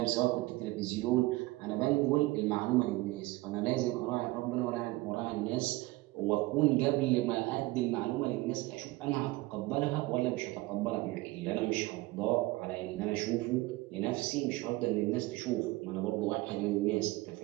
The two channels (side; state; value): left; quieter; 20.4 dB